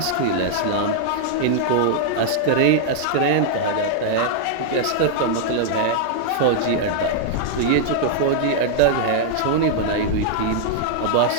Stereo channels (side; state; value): both; different; correlation -0.01